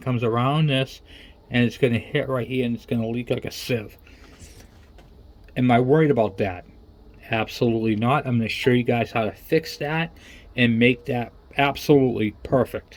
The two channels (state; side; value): identical; both; correlation 1.00